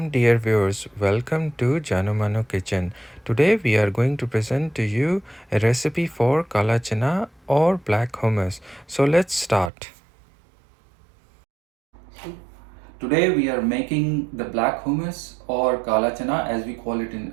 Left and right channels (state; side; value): drops out; left; at 9.7 s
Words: dear viewers, welcome to Janumanu Kitchen. Today we are going to present to you a recipe for kaala chana or black hummus. So let's start. Today we are making the black hummus or kaala chana as we call it in